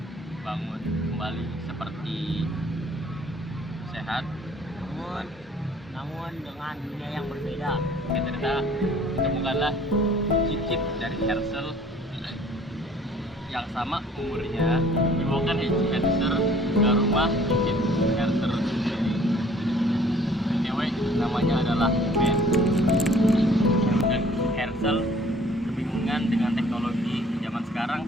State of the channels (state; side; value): normal; both; correlation 0.55